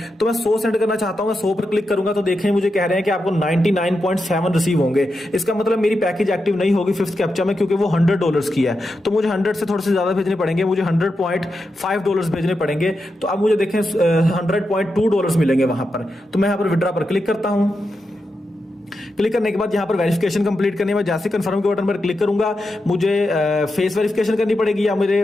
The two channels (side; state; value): both; normal; correlation 0.87